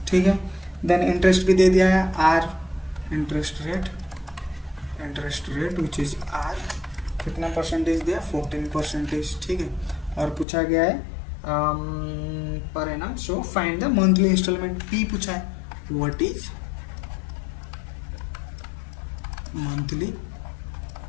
ठीक है. देन इंटरेस्ट भी दे दिया है, our interest rate which is R, कितना परसेंटेज दिया? 14%, ठीक है. और पूछा गया है per annum. So find the monthly installment. P पूछा है, what is monthly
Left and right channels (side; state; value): right; drops out; at 10.5 s